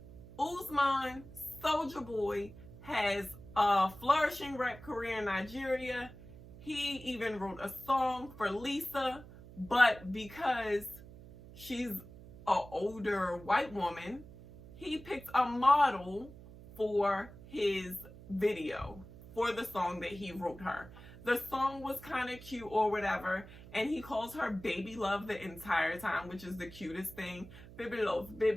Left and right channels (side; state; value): right; noise; hum, 17 dB below the sound